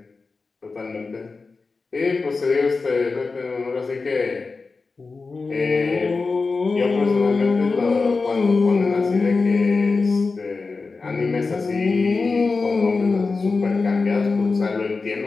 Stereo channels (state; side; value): quieter; right; 4.2 dB